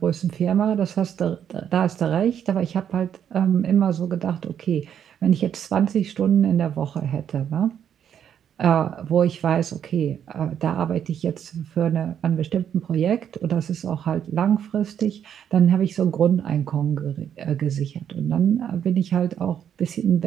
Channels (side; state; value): left; quieter; 9.0 dB